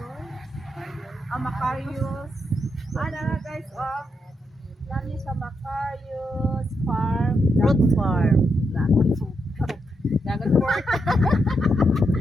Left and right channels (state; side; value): normal; both; correlation 0.82